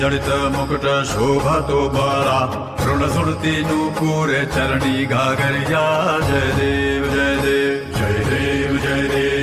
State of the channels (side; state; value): both; identical; correlation 1.00